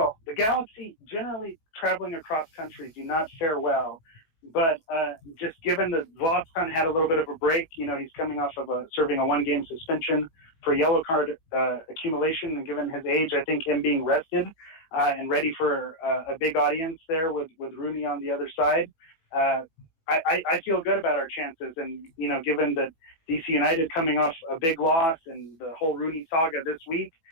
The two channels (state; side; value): late; right; 18 ms